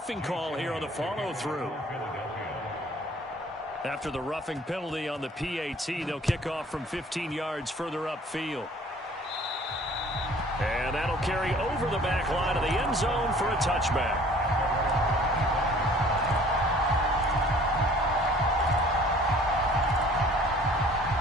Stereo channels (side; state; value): both; normal; correlation 0.53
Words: call here on the follow-through. After the roughing penalty on the PAT, they'll kick off from 15 yards further upfield. And that'll carry over the back line of the end zone for a touchback.